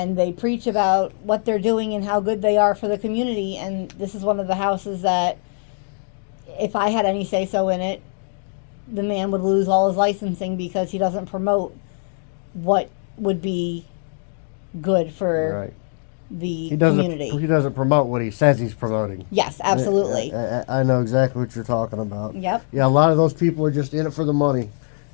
they preach about what they're doing and how good they are for the community. And this is one of the houses that, if I had any say so in it, the man would lose all his licensing because he doesn't promote what would be good for right. the He doesn't. community. He doesn't promote what he says he's promoting. Yes, absolutely. I know exactly what you're talking about. Yep. Yeah, a lot of those people are just in it for the money.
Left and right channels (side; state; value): right; silent; digital silence